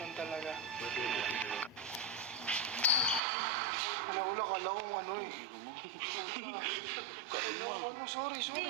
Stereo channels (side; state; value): left; drops out; at 3.2 s